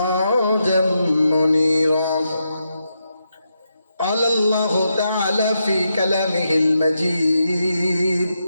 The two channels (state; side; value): inverted; both; correlation -0.84